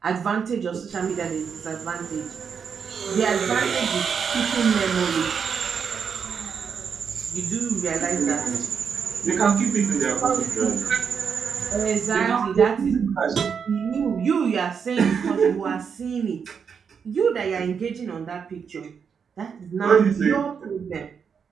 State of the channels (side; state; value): left; quieter; 6.6 dB